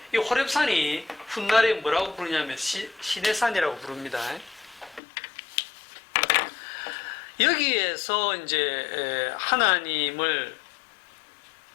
이 호렙산이 훗날에 뭐라고 부르냐면 시내산이라고 부릅니다. 여기에서 이제 하나님을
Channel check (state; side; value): drops out; right; at 5.0 s